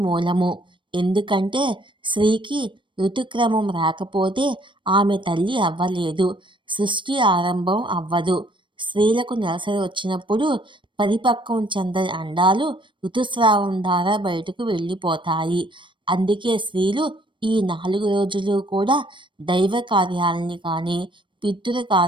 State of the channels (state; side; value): late; left; 0.24 ms